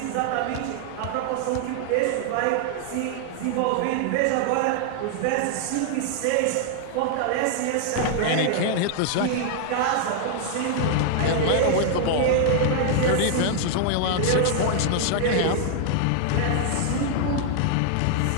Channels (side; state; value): both; different; correlation 0.00